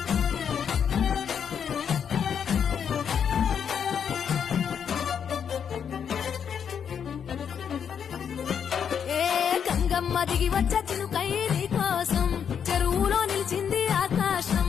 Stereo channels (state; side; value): quieter; right; 7.7 dB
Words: గంగమ్మ దిగి వచ్చ చినుకై నీ కోసం చెరువులో నిలిచింది ఆకాశం